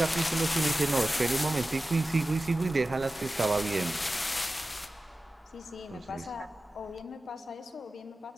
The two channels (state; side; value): normal; both; correlation 0.95